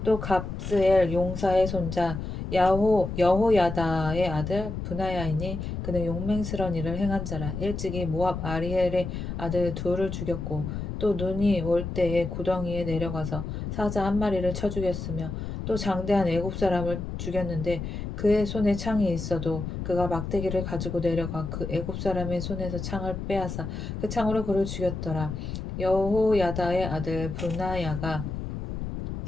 또 갑스엘 용사의 손자 여호야다의 아들 브나야이니 그는 용맹스러운 일을 행한 자라. 일찍이 모압 아리엘의 아들 둘을 죽였고 또 눈이 올 때에 구덩이에 내려가서 사자 한 마리를 쳐 죽였으며 또 장대한 애굽 사람을 죽였는데 그의 손에 창이 있어도 그가 막대기를 가지고 내려가 그 애굽 사람의 손에서 창을 빼앗아 그 창으로 그를 죽였더라. 여호야다의 아들 브나야가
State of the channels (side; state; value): left; noise; rumble, 5 dB below the sound